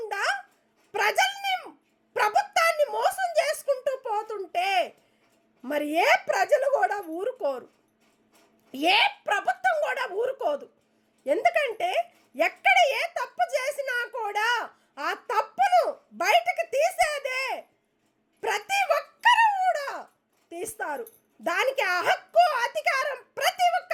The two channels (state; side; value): identical; both; correlation 1.00